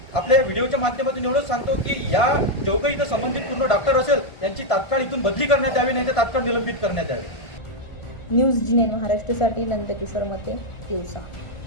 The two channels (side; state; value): right; late; 1.5 ms